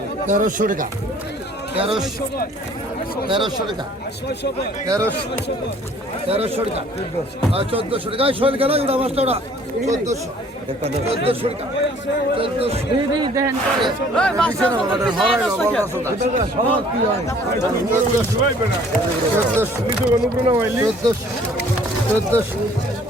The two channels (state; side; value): normal; both; correlation 0.56